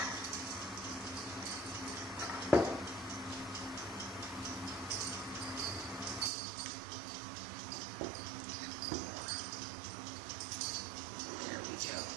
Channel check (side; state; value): left; drops out; at 6.3 s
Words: There we go.